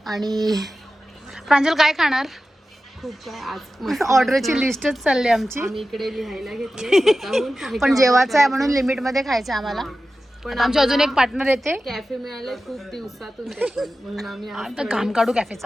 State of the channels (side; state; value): both; normal; correlation 0.94